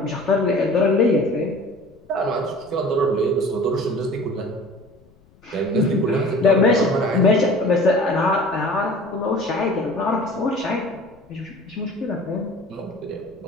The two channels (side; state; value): left; noise; rumble, 29 dB below the sound